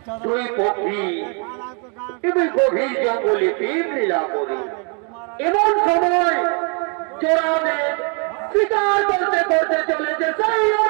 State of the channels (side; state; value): left; quieter; 37.9 dB